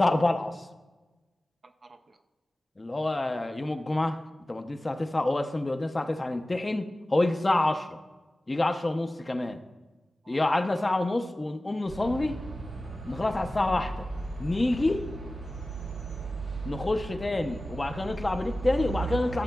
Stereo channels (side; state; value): both; normal; correlation 0.96